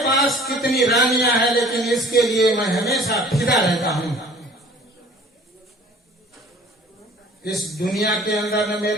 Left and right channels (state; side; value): normal; both; correlation 0.49